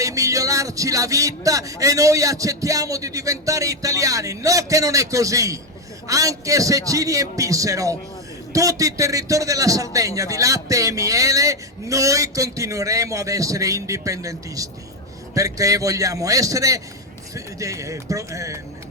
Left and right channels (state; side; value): normal; both; correlation 0.07